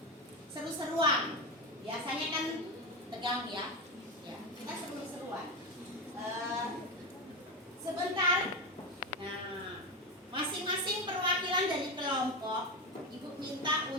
seru-seruan. Biasanya kan tegang ya. Ya, kita seru-seruan. Sebentar. Nah, masing-masing perwakilan dari kelompok, ibu minta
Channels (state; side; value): normal; both; correlation 0.16